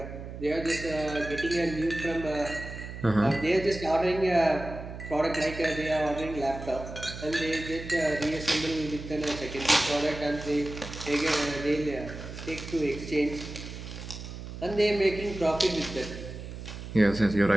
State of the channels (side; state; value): right; noise; hum, 10 dB below the sound